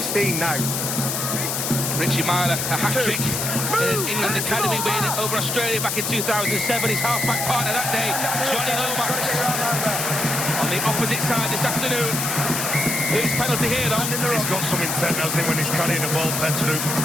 now. Richie Myler, a hat-trick in his England Academy win over Australia back in 2007. His half-back partner that day, Johnny Lomax. On the opposite side this afternoon. His penalty here, though. He's got some intent, hasn't he, when he's carrying the ball, Petteru.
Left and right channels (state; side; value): noise; left; hiss, 1 dB below the sound